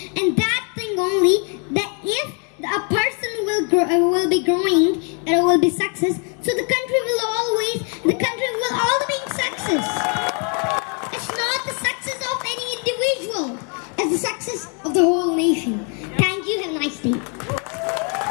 and that thing only, that if a person will be growing and will be success, so the country will all be in success. It's not the success of any individual, it's the success of the whole nation. Thank you, have a nice day.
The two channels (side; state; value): right; quieter; 38.1 dB